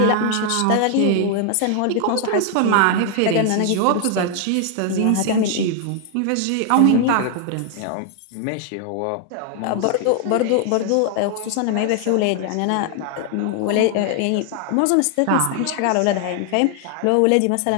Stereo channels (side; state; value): both; different; correlation 0.00